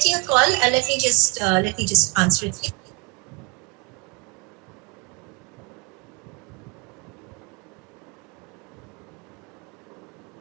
a call. Let me just answer it.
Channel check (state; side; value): quieter; left; 29.2 dB